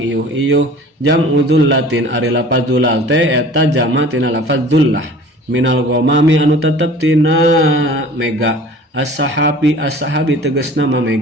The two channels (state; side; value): normal; both; correlation 0.45